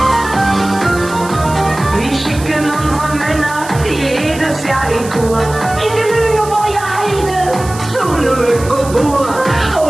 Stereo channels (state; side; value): noise; right; hiss, 15 dB below the sound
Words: Wir schicken unsere Männer jedes Jahr in Kur. In die Lüneburger Heide, zu Lüneburg.